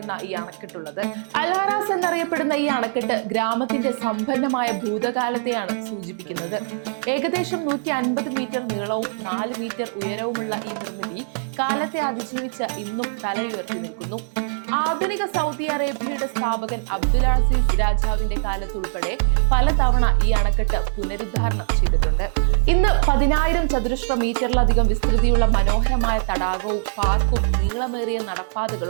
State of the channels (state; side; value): silent; left; 64 dB below the other